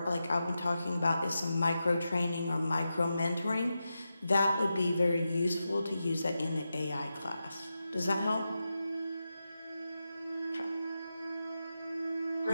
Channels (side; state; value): both; inverted; correlation -0.90